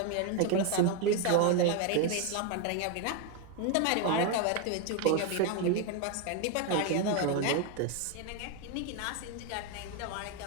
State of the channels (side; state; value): both; different; correlation 0.01